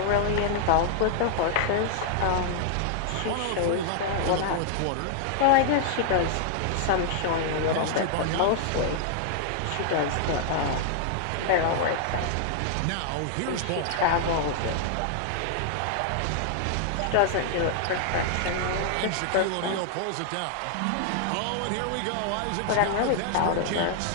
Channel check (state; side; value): different; both; correlation -0.01